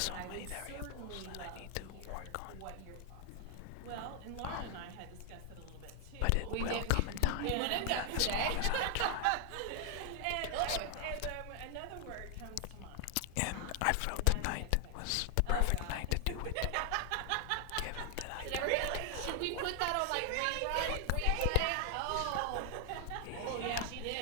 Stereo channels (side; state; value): both; different; correlation 0.00